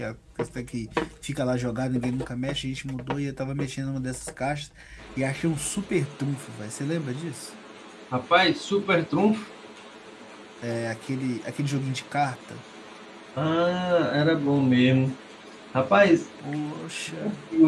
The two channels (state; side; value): identical; both; correlation 1.00